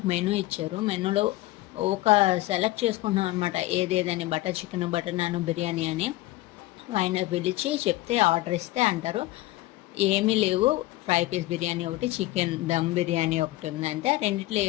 మెనూ ఇచ్చారు. మెనూలో ఒక సెలెక్ట్ చేసుకుంటున్నాం అనమాట, ఏదేదని butter chicken, butter non, biryani అని. ఆయన పిలిచి చెప్తే ఆర్డర్ ఇస్తే అంటారు ఏమీ లేవు, ఫ్రై పీస్ బిర్యానీ ఒకటి, చికెన్ దమ్ బిర్యానీ ఒకటి ఉంది, అంతే, రెండిట్లో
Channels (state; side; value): quieter; right; 17.9 dB